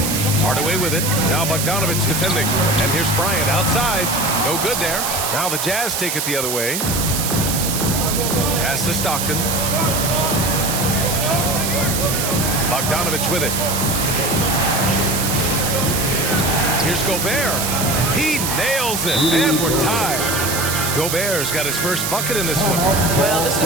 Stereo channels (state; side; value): noise; right; hiss, 2 dB below the sound